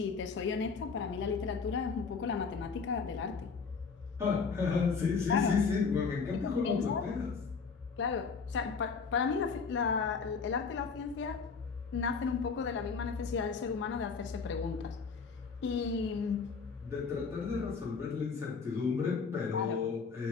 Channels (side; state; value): right; quieter; 5.2 dB